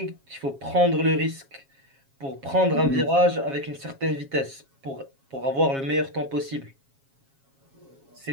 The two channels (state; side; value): late; left; 7.3 ms